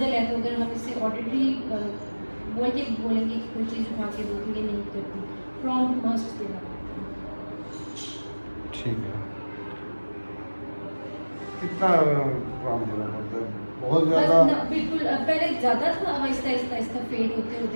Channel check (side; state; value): both; inverted; correlation -1.00